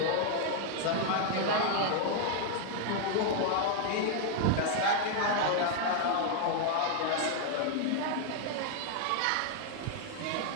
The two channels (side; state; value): both; different; correlation 0.00